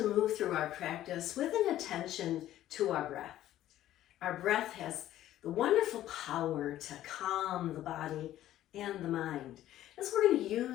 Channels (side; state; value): right; quieter; 13.3 dB